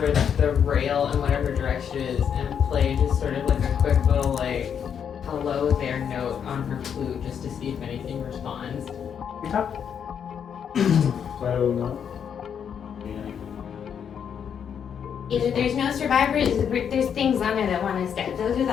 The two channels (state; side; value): quieter; right; 7.9 dB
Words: the rail in whatever direction it is and play just sort of like a quick little hello there note on her flute just to see if anything responds. Okay. Play a little note. Either there's no survivors, or there's things on there that want us dead. Those are the